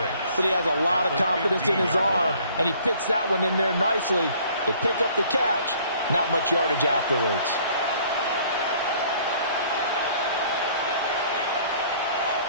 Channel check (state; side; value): inverted; both; correlation -0.57